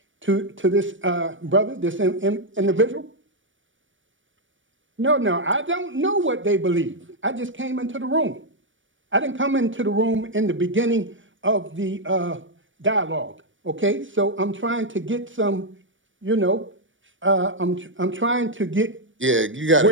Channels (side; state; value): left; late; 0.56 ms